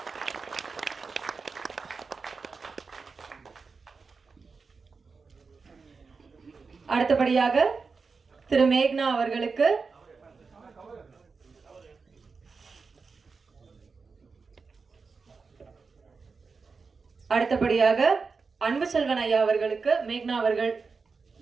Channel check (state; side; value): quieter; left; 4.7 dB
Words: அடுத்தபடியாக திரு மேக்னா அவர்களுக்கு அடுத்தபடியாக அன்பு செல்வன் ஐயா அவர்களுக்கு மேக்னா அவர்கள்